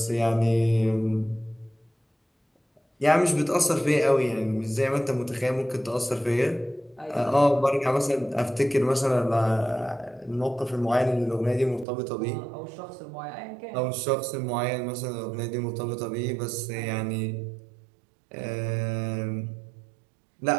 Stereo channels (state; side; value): drops out; left; at 11.9 s